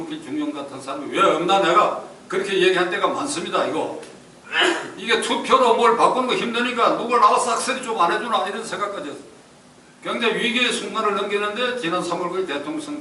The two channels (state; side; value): identical; both; correlation 1.00